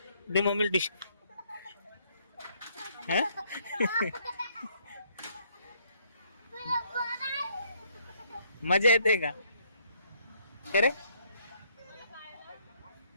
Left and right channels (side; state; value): both; inverted; correlation -0.68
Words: मम्मीला डिश. मजा येते का खरे?